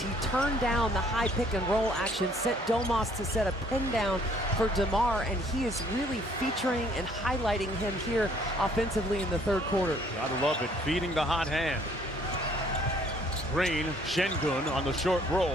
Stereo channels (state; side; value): normal; both; correlation 0.61